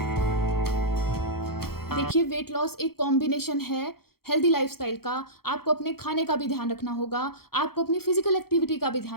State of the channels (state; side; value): late; right; 0.94 ms